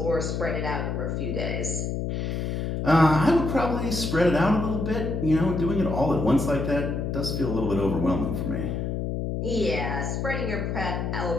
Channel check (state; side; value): noise; left; hum, 2 dB below the sound